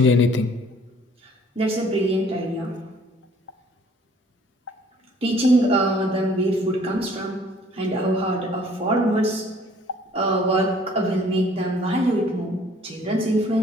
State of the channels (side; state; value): both; normal; correlation 0.57